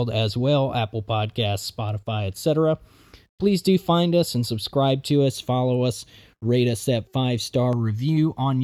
as well, Apple Podcasts, Spotify, etc. Please do find us and subscribe to us, follow us, rate us that 5-star review on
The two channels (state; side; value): identical; both; correlation 1.00